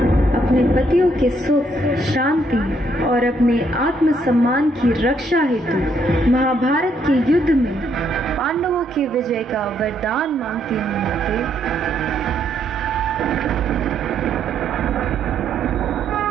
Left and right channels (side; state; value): both; normal; correlation 0.72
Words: अपने पतियों के सुख, शांति और अपने आत्मसम्मान की रक्षा हेतु महाभारत के युद्ध में पांडवों की विजय का वरदान मांगती हूँ। माते,